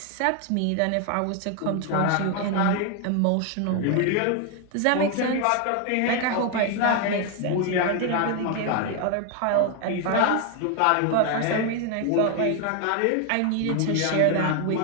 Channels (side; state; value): both; different; correlation 0.01